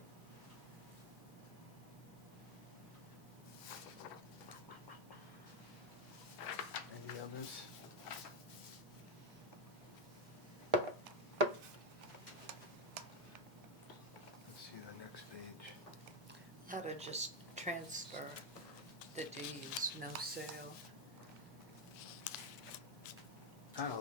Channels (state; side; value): normal; both; correlation 0.06